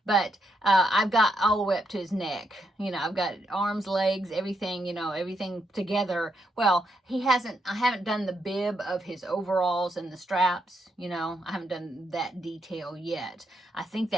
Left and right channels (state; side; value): normal; both; correlation 0.79